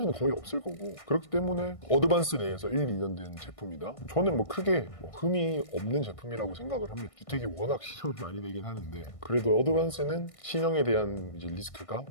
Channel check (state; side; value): late; right; 1.6 ms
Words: 거의 없을 거고, 그렇기 때문에 어드밴스 내에서 1, 2년 된 제품이다. 저는 크게 흠이 없는 제품이라고 생각을 합니다. 뉴텍이 워낙 신형이 많이 되긴 하는데 그래도 어드밴스는 신형에 대한 이제 리스크가